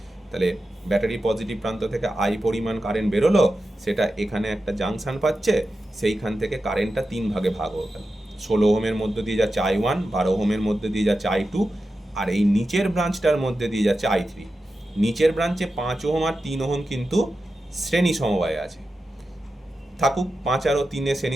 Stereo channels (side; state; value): both; normal; correlation 0.91